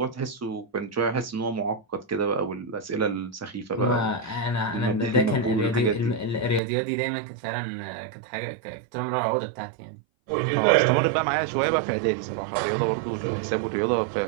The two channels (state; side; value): drops out; left; at 6.6 s